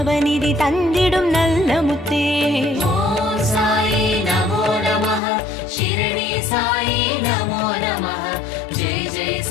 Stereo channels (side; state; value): right; drops out; at 5.2 s